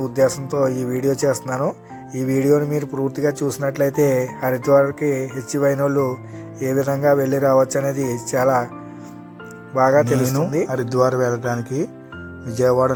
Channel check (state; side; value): identical; both; correlation 1.00